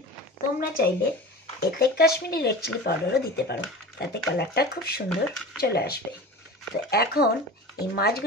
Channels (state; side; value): normal; both; correlation 0.35